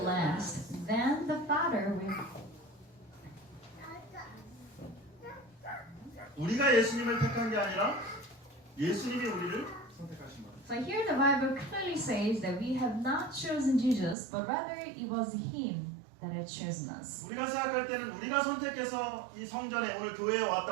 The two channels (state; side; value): drops out; left; at 14.2 s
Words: last. Then the Father will. 우리가 예수님을 택한 게 아니라 예수님이 우리를 선택하신 겁니다. So here the Bible clearly says that we have not chosen Jesus, but rather it was Him that had chosen us. 우리가 생각할 때는 우리가 선택해서 이 성전에 오늘 교회에